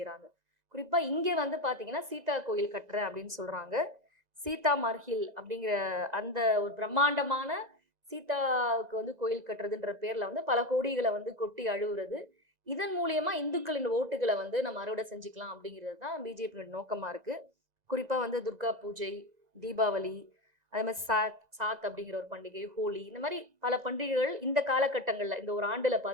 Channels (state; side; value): late; left; 2.0 ms